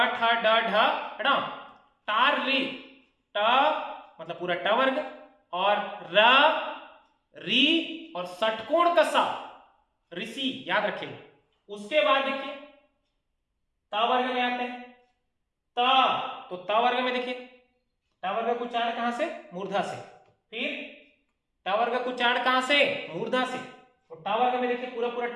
ठ ड ढ ण, तार री, ट मतलब पूरा ट वर्ग और र री और षटकोण का सा, ऋषि, याद रखिएगा। उसके बाद देखिए त वर्ग में आते हैं, त, तो त वर्ग में देखिए ट वर्ग का उच्चारण कहां से? मूर्धा से। फिर ट वर्ग का उच्चारण कहां से? मूर्धा से। तो ट वर्ग में देखिए पूरा पूरा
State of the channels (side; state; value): both; identical; correlation 1.00